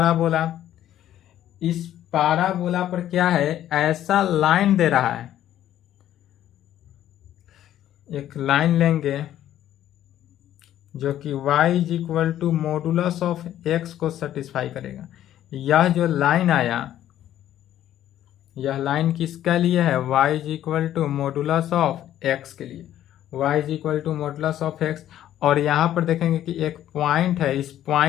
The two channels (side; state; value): right; quieter; 12.0 dB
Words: इस पाराबोला पर क्या है, ऐसा लाइन दे रहा है, एक लाइन लेंगे जो कि y is equal to modulus of x को सेटिस्फाई करेगा। यह जो लाइन आया, यह लाइन किसके लिए है, y is equal to modulus of x के लिए, y is equal to modulus of x। और यहाँ पर देखेंगे कि एक पॉइंट है, इस